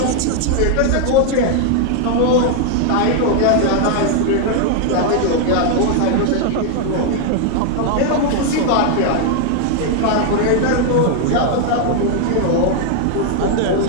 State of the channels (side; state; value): both; different; correlation 0.00